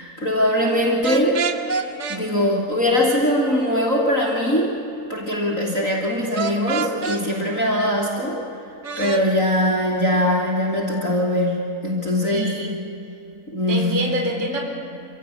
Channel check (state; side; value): late; right; 3.9 ms